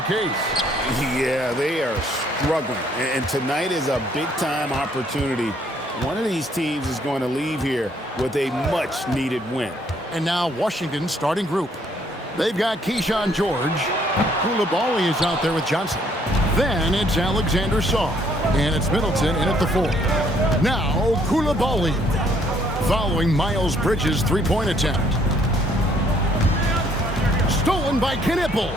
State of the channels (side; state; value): both; normal; correlation 0.66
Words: case. Yeah, they are struggling, and tonight is a big-time opportunity. One of these teams is going to leave here with a much-needed win. And now Washington's starting group. They've got Keyshawn George. Koulibaly is out there with Johnson. Then it's Alexander Sarr. And it's Middleton in at the 4. Now Koulibaly. Following Miles Bridges' three-point attempt. Stolen by Knipple.